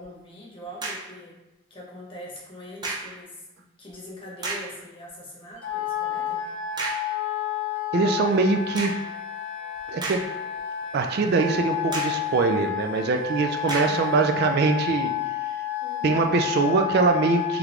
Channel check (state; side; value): normal; both; correlation 0.18